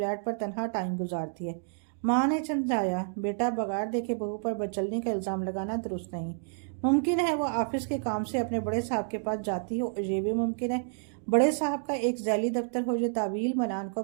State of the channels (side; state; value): left; silent; digital silence